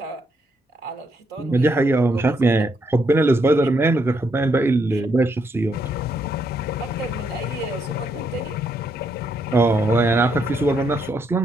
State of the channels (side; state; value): both; normal; correlation 0.76